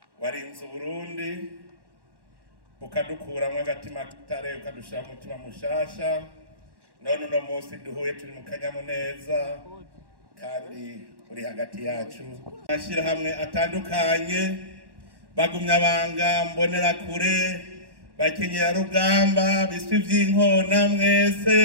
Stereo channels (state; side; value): late; left; 1.1 ms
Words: warinze Uburundi ukadukuramwo agatima k'itare ukadushira mu mutima mushasha, none uno munsi duhuye turi mu kanyamuneza kandi uri hagati yacu. Amashirahamwe atandukanye, bagumyabanga, mbonerakure, bakenyerarugamba, biswi vy'inkona,